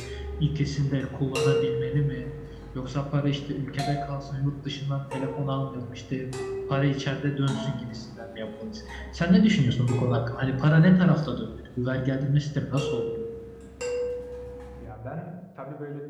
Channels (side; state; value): both; identical; correlation 1.00